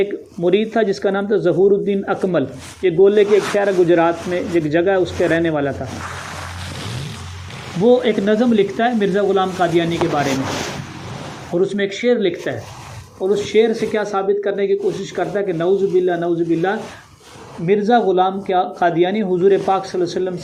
مرید تھا جس کا نام تھا ظہور الدین اکمل. یہ گولے کے ایک شہر ہے گجرات میں، ایک جگہ ہے، اس کے رہنے والا تھا. وہ ایک نظم لکھتا ہے مرزا غلام قادیانی کے بارے میں اور اس میں ایک شعر لکھتا ہے اور اس شعر سے کیا ثابت کرنے کی کوشش کرتا ہے کہ نعوذ باللہ مرزا غلام قادیانی حضور پاک صلی اللہ علیہ وسلم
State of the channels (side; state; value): both; identical; correlation 1.00